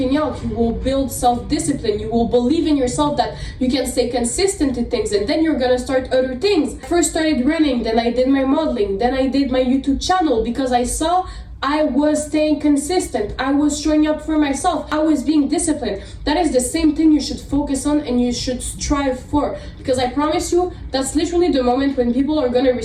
out, you will build self-discipline, you will believe in yourself that you can stay consistent to things, and then you're gonna start other things. I first started running, then I did my modeling, then I did my YouTube channel because I saw I was staying consistent, I was showing up for myself, I was being disciplined. That is the same thing you should focus on and you should strive for, because I promise you, that's literally the moment when people are gonna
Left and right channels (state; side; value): identical; both; correlation 1.00